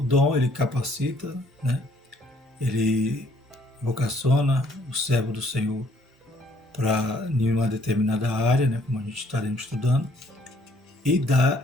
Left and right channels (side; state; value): both; normal; correlation 0.64